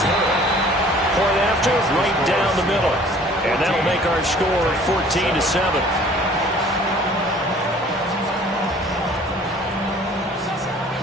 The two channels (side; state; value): both; normal; correlation 0.52